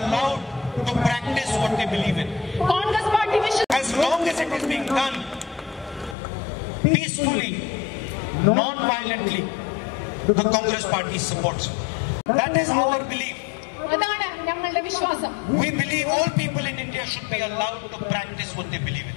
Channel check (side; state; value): right; drops out; at 6.2 s